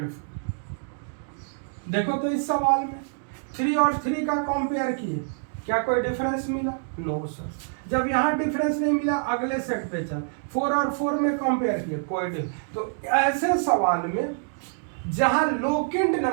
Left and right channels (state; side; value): silent; left; digital silence